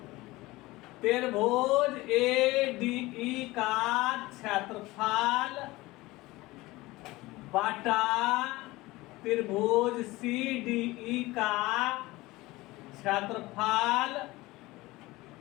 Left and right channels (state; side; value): quieter; right; 20.0 dB